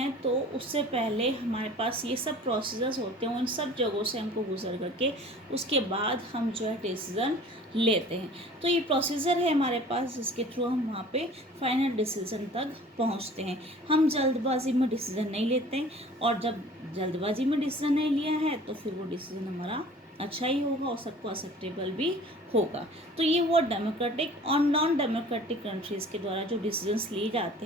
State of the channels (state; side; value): normal; both; correlation 0.46